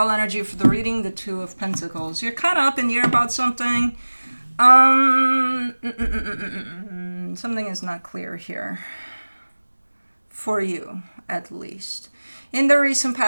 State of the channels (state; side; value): inverted; both; correlation -1.00